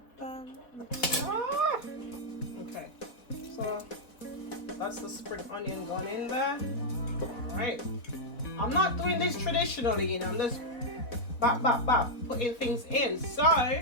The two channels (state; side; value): late; right; 4.1 ms